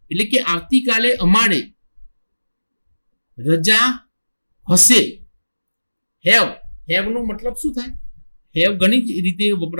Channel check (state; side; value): inverted; both; correlation -1.00